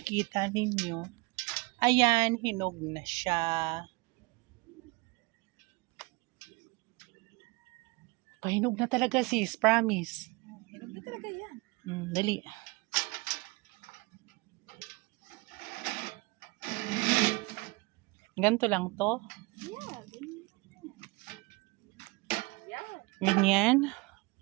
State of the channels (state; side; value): quieter; left; 25.8 dB